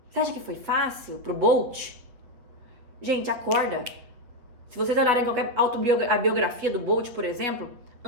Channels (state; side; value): late; left; 8.5 ms